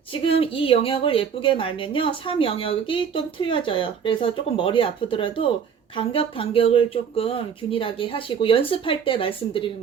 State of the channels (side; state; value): left; quieter; 7.1 dB